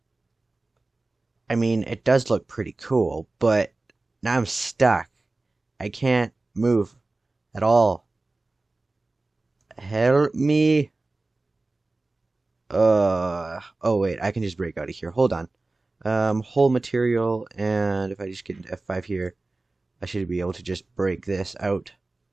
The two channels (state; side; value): quieter; left; 3.2 dB